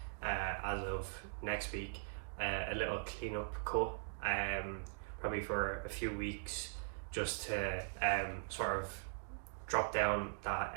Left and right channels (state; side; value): silent; left; digital silence